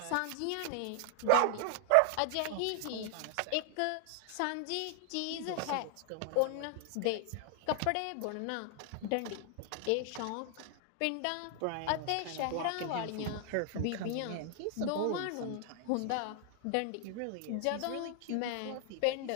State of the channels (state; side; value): different; both; correlation 0.00